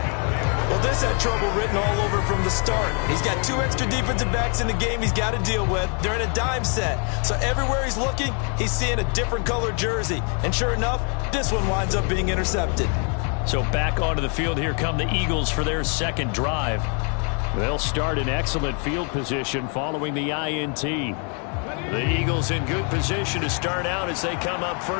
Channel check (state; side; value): quieter; right; 39.9 dB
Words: Well, this had trouble written all over from the start. He's got 2 extra defensive backs in the game he's got to deal with. They're in a dime set. So everywhere he's looking, he's seeing a different color jersey. And sure enough, this one winds up being intercepted. So back onto the field here come the Eagles for their 2nd drive. They'll start in excellent field position following the INT. The Eagles in good position to start out as they come up